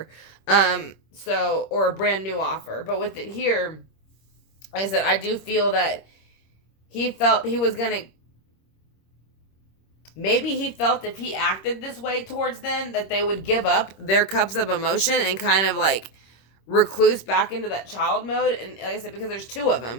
Or a brand new offer. But with it here, like I said, I do feel that he felt he was going to, maybe he felt if he acted this way towards them that they would give up their cups of emotion and kind of like recluse back into that child mode. And like I said, because there's 2 of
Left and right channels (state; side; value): late; right; 26 ms